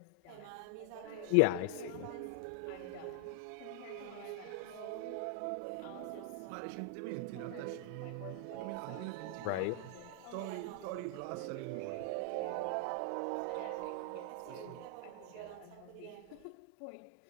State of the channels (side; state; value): both; different; correlation 0.00